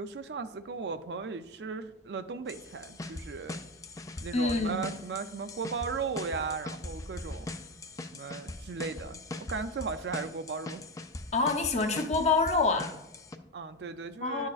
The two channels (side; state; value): both; normal; correlation 0.13